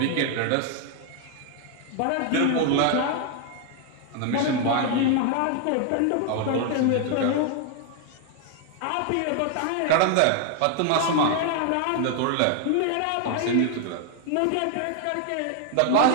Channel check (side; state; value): both; different; correlation 0.00